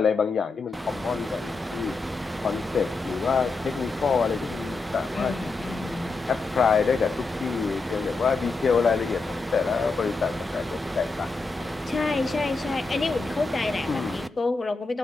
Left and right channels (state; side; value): quieter; right; 3.8 dB